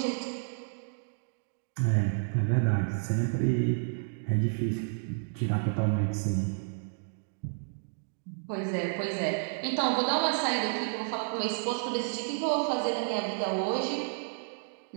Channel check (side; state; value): left; silent; digital silence